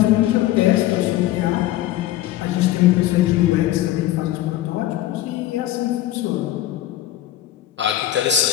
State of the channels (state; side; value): quieter; right; 14.0 dB